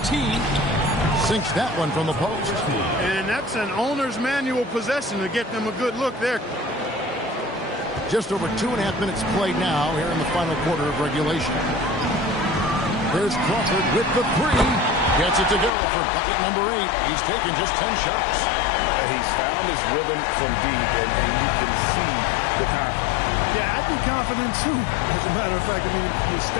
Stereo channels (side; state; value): right; drops out; at 15.7 s